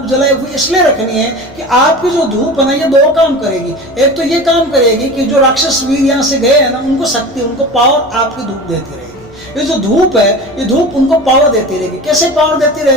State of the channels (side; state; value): both; normal; correlation 0.33